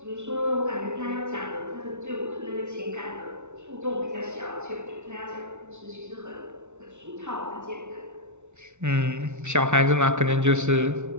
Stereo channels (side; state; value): left; late; 0.83 ms